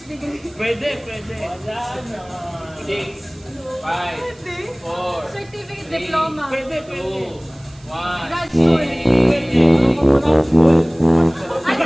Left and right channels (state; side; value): noise; right; hiss, 28 dB below the sound